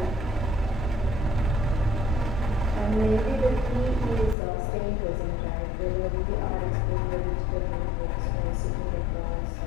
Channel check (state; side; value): drops out; right; at 4.4 s